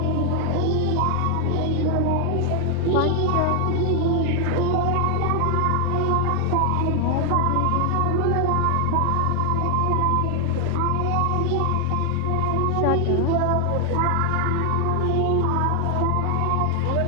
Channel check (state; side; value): different; both; correlation 0.00